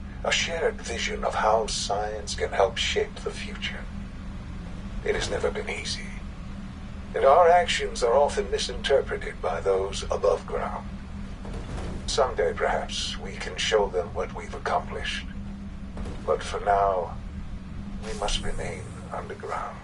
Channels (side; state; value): both; identical; correlation 1.00